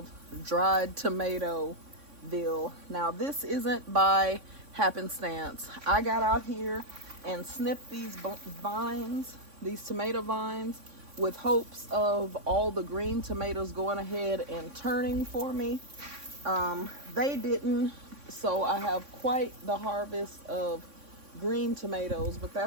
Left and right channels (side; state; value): left; late; 3.6 ms